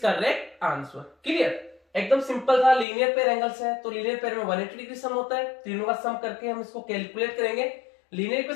answer. Clear. एकदम सिंपल था, लीनियर पेयर एंगल्स है तो लीनियर पेयर में 180 डिग्री सम होता है, तीनों का सम करके हम इसको कैलकुलेट करेंगे, लीनियर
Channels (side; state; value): right; drops out; at 2.9 s